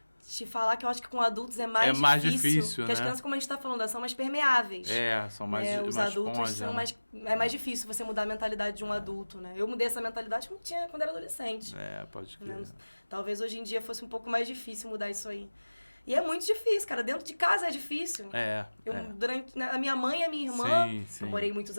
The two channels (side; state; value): both; inverted; correlation -1.00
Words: Te falar que eu acho que com adultos é mais difícil. Porque as né? crianças, como a gente está falando, elas são mais permeáveis. São mais os mais adultos esponja, são mais... É mais difícil você mudar a mentalidade de um adulto, né? Eu mudei essa mentalidade quando era adolescente. Pode crer. Né? Talvez hoje em dia fosse um pouco mais difícil mudar isso aí. E é muito difícil, cara. Dentro de casa é difícil. Durante a minha mãe e a minha irmã, sim. eu morei